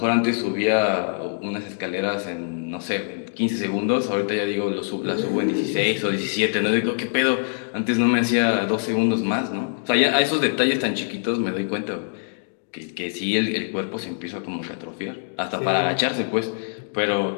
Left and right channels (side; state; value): right; silent; digital silence